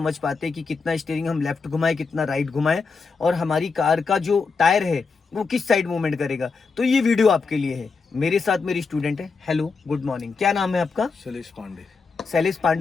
पाते कि कितना स्टीयरिंग हम लेफ्ट घुमाएं, कितना राइट घुमाएं और हमारी कार का जो टायर है वो किस साइड मूवमेंट करेगा, तो ये वीडियो आपके लिए है। मेरे साथ मेरी स्टूडेंट है। Hello, good morning. क्या नाम है आपका? शैलेश पांडे। शैलेश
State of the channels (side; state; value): right; quieter; 4.7 dB